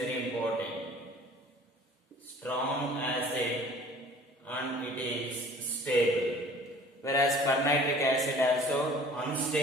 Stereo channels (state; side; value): normal; both; correlation 0.49